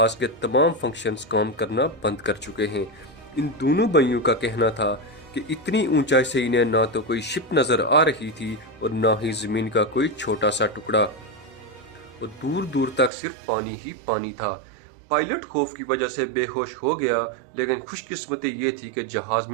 کے تمام فنکشنز کام کرنا بند کر چکے ہیں۔ ان دونوں بھائیوں کا کہنا تھا کہ اتنی اونچائی سے انہیں نہ تو کوئی شپ نظر آ رہی تھی اور نہ ہی زمین کا کوئی چھوٹا سا ٹکڑا، اور دور دور تک صرف پانی ہی پانی تھا۔ پائلٹ خوف کی وجہ سے بے ہوش ہو گیا، لیکن خوش قسمتی یہ تھی کہ جہاز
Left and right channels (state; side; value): drops out; left; at 13.1 s